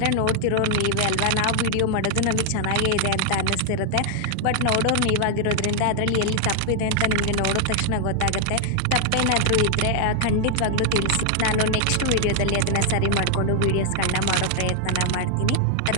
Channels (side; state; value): both; different; correlation 0.00